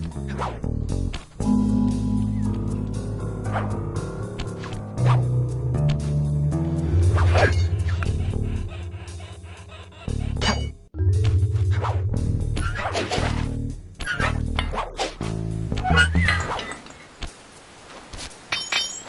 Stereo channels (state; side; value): identical; both; correlation 1.00